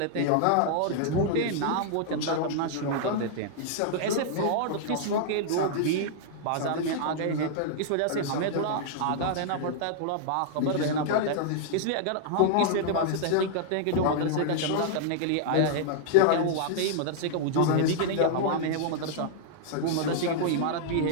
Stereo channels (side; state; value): both; different; correlation -0.01